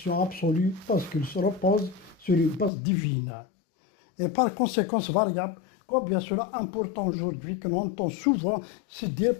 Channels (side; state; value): right; drops out; at 2.7 s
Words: absolue parce qu'il se repose sur une base divine. Et par conséquence variable, combien cela est important aujourd'hui que l'on entend souvent se dire